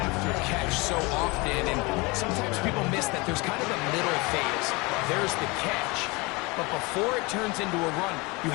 after catch so often, and sometimes people miss that there's kind of a middle phase. There's the catch, but before it turns into a run, you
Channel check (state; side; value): quieter; right; 25.7 dB